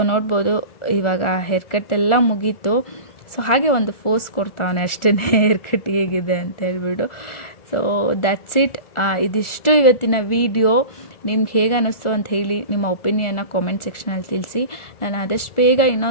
ನೋಡ್ಬೋದು ಇವಾಗ ಹೇರ್ ಕಟ್ ಎಲ್ಲ ಮುಗೀತು. ಸೊ ಹಾಗೆ ಒಂದು ಫೋಸ್ ಕೊಡ್ತಾವನೆ ಅಷ್ಟೇ ಹೇರ್ ಕಟ್ ಹೇಗಿದೆ ಅಂತ ಹೇಳ್ಬಿಟ್ಟು. So that's it. ಇದಿಷ್ಟು ಇವತ್ತಿನ ವಿಡಿಯೋ. ನಿಮ್ಗೆ ಹೇಗೆ ಅನ್ನಿಸ್ತು ಅಂತ ಹೇಳಿ ನಿಮ್ಮ ಒಪಿನಿಯನ್ನ ಕಾಮೆಂಟ್ ಸೆಕ್ಷನಲ್ಲಿ ತಿಳಿಸಿ. ನಾನು ಆದಷ್ಟು ಬೇಗ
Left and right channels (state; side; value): late; right; 1.4 ms